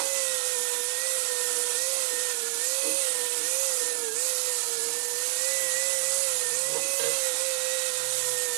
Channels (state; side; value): silent; left; 60 dB below the other